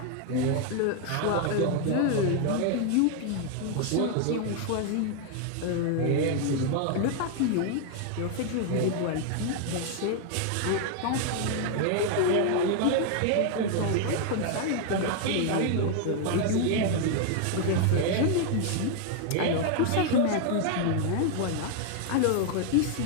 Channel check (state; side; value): different; both; correlation 0.00